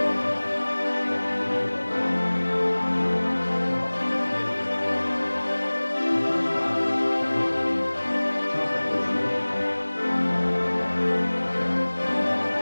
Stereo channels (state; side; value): inverted; both; correlation -1.00